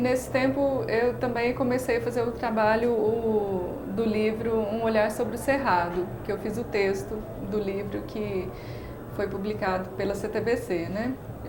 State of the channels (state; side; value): identical; both; correlation 1.00